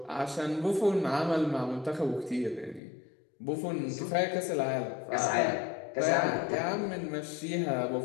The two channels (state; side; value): drops out; right; at 2.8 s